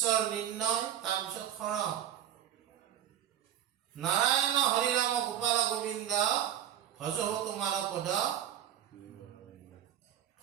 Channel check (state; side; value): quieter; left; 10.7 dB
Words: নিৰ্ণয়, তাৰপিছত শৰণ। নাৰায়ণ হৰি ৰাম গোপাল গোবিন্দ, ভজহো তোমাৰ পদ,